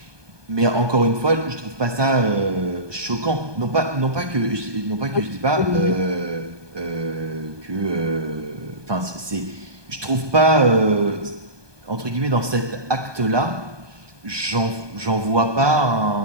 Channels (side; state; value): left; late; 1.2 ms